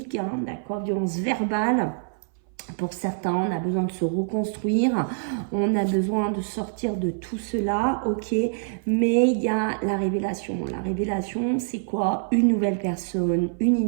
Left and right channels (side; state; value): left; silent; 60 dB below the other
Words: hein, d'accord, violences verbales. Pour certains, on a besoin de se reconstruire, on a besoin de sortir de tout cela, ok, mais il y a la révélation. La révélation, c'est quoi? Une nouvelle personne, une